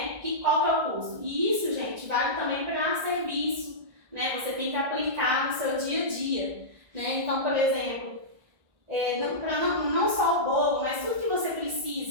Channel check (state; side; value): late; left; 1.5 ms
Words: Qual que é o custo? E isso, gente, vale também para serviço. Né? Você tem que aplicar no seu dia a dia. Né? Então, por exemplo, não só o bolo, mas tudo que você